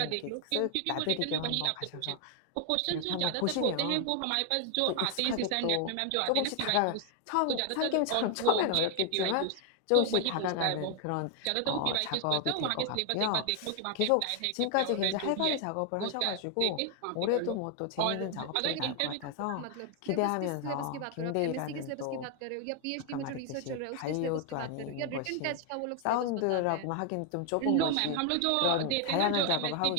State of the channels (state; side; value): different; both; correlation 0.00